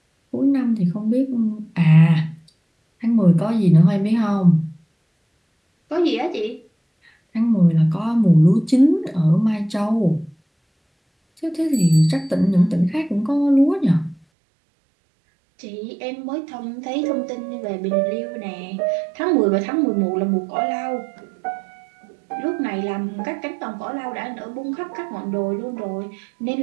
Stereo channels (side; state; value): left; drops out; at 14.2 s